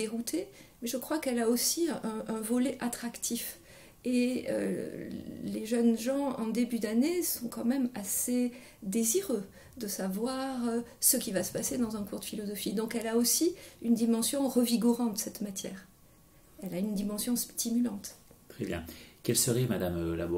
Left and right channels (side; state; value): both; identical; correlation 1.00